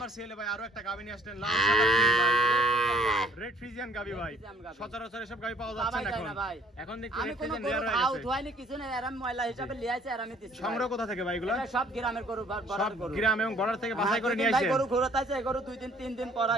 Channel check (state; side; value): normal; both; correlation 0.60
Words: সিএলে ভাই আরো একটা গাবি নিয়ে আসলেন, লাল সাদা ফ্রিজ ভাই। রেড ফ্রিজিয়ান গাবি ভাই। ফ্রিজিয়ান গাবি। সচরাচর এসব গাবি পাওয়া যাচ্ছে পাওয়াই না যায় এখন। না ভাই। এখন দেখি আমি রেড কোনো ফ্রিজিয়ান গরু রেয়ার হয়ে খাও গেছে। ধোয়াইনি কিছু না, এরাম ময়লা হিসাবে লিয়ে আইছে আর আমি দিচ্ছি ভাই। সংগ্রহ কোথা থেকে ভাই এগুলো? এটা সব গ্রামের গরু সব বড়ার গরু। গ্রাম এবং বর্ডার থেকে বাছাই করে নিয়ে ভাই আসেন। গরু ঘুরতাইছে এই গরু 2 দিন 3 দিন পর